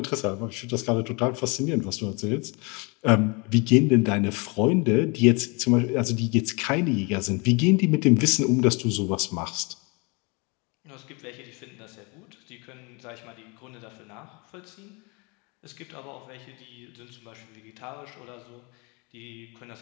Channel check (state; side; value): quieter; right; 30.1 dB